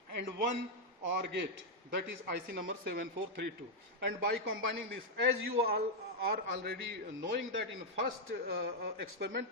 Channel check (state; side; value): normal; both; correlation -0.01